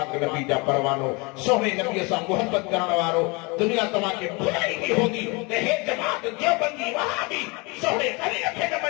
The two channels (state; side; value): quieter; right; 28.0 dB